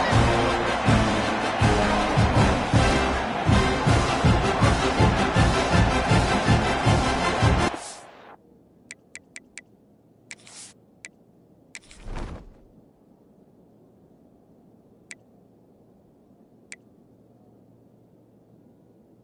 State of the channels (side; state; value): both; identical; correlation 1.00